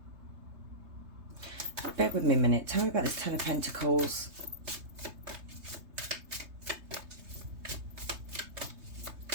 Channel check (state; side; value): late; left; 3.3 ms